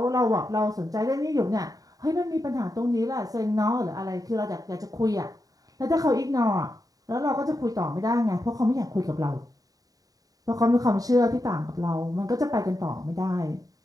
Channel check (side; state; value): left; late; 0.18 ms